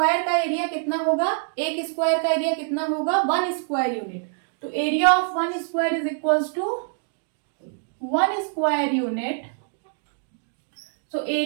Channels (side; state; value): left; silent; digital silence